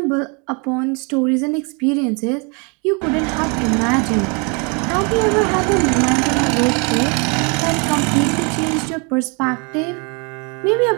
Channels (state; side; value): quieter; left; 33.5 dB